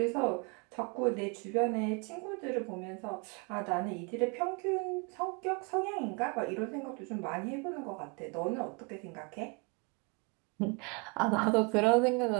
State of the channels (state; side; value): quieter; left; 32.0 dB